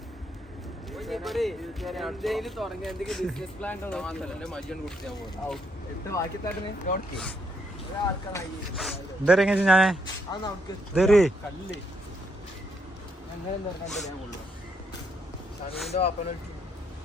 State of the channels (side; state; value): both; normal; correlation 0.75